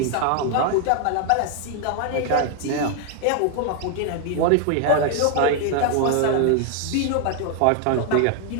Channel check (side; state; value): both; different; correlation 0.00